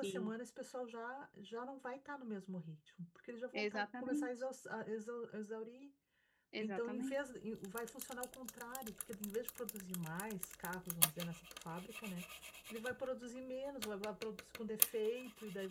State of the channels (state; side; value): identical; both; correlation 1.00